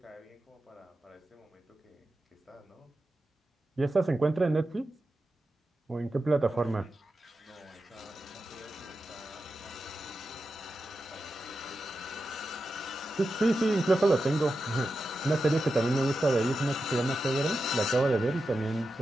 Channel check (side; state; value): both; normal; correlation 0.90